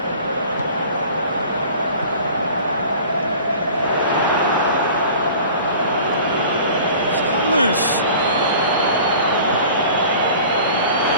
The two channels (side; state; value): both; inverted; correlation -0.44